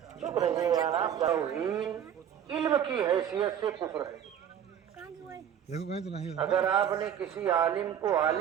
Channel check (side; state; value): left; quieter; 9.2 dB